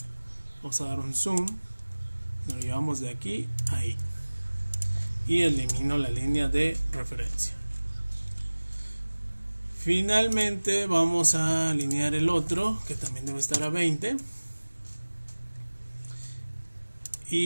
Vamos a dar un zoom, nos lo llevamos de aquí a ahí. y elimino la línea de referencia. Finalmente vamos a alinear el otro, que también debe estar a 20,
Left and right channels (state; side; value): inverted; both; correlation -1.00